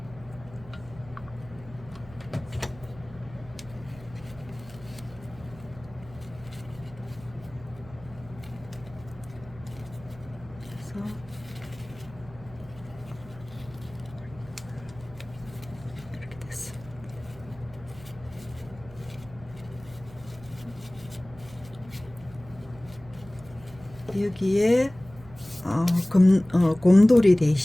이렇게 됐어. 여기에 곰돌이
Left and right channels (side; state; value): right; noise; hum, 19 dB below the sound